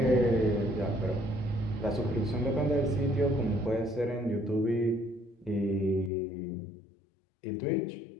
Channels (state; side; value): drops out; right; at 6.1 s